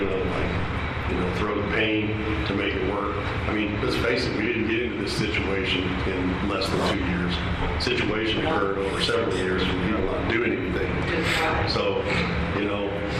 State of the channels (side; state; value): both; identical; correlation 1.00